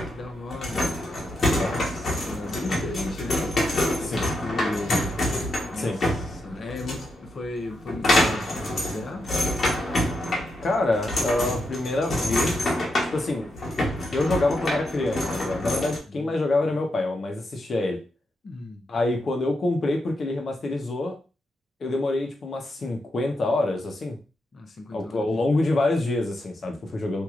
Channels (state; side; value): normal; both; correlation 0.84